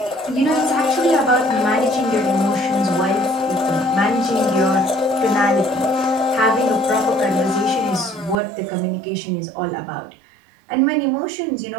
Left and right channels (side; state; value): left; drops out; at 8.3 s